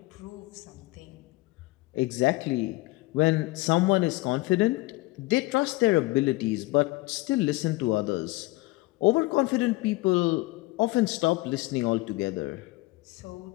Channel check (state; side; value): quieter; right; 21.2 dB